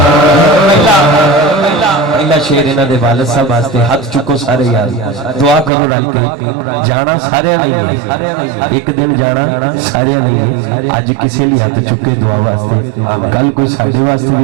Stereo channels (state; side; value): drops out; left; at 5.7 s